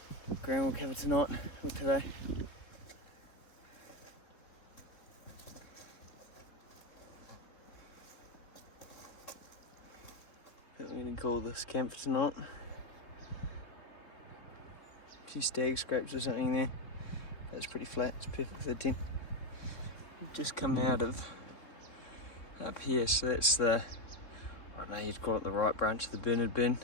ground we'll cover tonight or today. I think we're going to call this camp for tonight. A few stag scrapes or something there. That's pretty flat, it's perfect for the tent. We've just come out of up here, so that's the, I don't know, you'd call it the right branch of the Bernard Burn.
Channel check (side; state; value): right; late; 3.6 ms